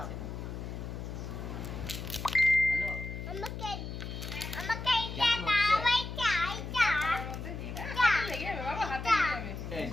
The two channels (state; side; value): noise; left; hum, 7 dB below the sound